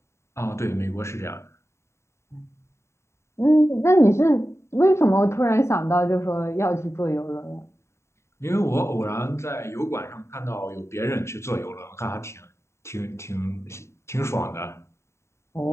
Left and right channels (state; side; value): late; right; 0.13 ms